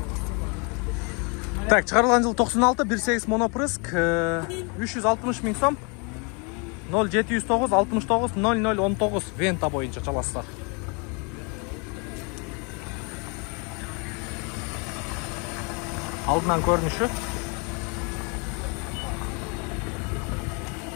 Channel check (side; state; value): right; quieter; 33.3 dB